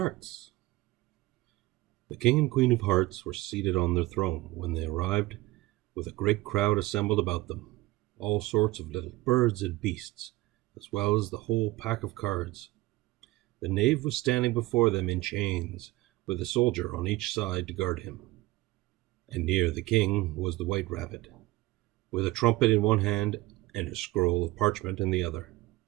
The King and Queen of Hearts were seated on their throne when they arrived, with a great crowd assembled about them, all sorts of little birds and beasts, as well as the whole pack of cards. The knave was standing before them in chains, with a soldier on each side to guard him. And near the king was the white rabbit, with a trumpet in one hand and a scroll of parchment in the other.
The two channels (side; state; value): left; quieter; 19.3 dB